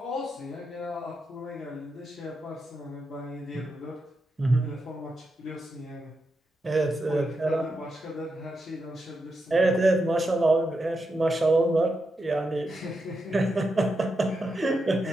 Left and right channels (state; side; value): normal; both; correlation 0.85